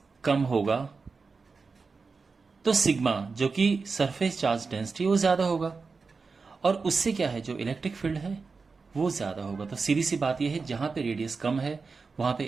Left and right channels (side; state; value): left; quieter; 4.6 dB